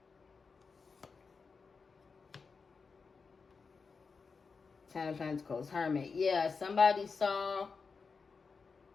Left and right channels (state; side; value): quieter; right; 4.9 dB